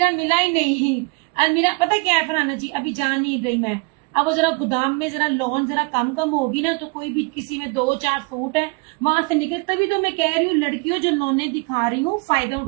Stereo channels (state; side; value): quieter; left; 29.6 dB